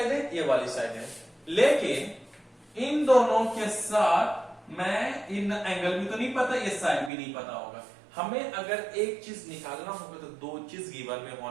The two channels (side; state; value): left; drops out; at 7.1 s